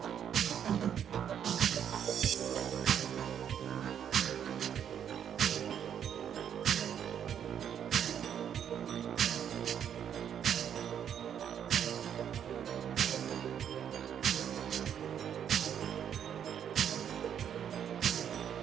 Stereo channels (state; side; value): quieter; left; 8.9 dB